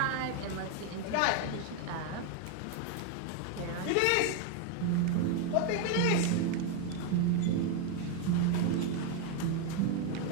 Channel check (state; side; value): different; both; correlation 0.01